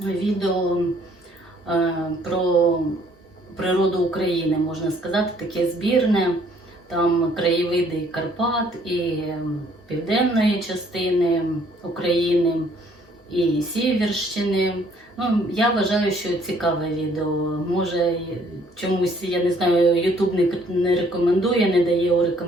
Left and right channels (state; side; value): normal; both; correlation 0.62